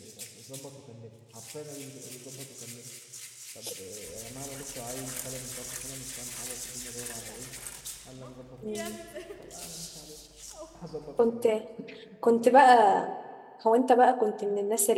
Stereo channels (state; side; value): identical; both; correlation 1.00